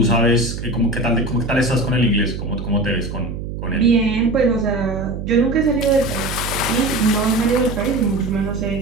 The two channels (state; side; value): noise; right; hum, 7 dB below the sound